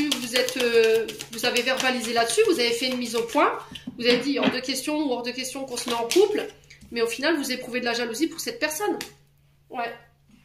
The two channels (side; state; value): both; identical; correlation 1.00